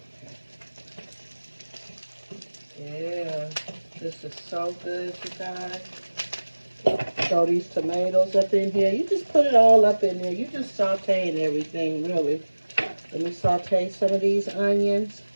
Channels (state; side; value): inverted; both; correlation -1.00